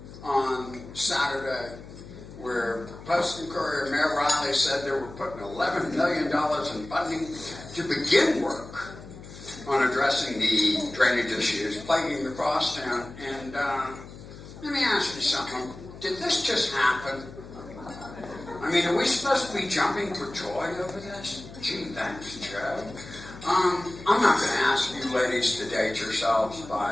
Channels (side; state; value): left; noise; hum, 16 dB below the sound